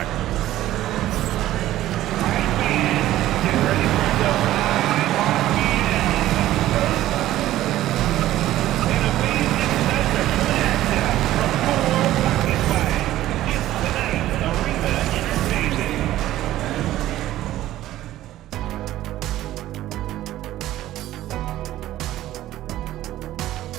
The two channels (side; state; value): left; quieter; 14.3 dB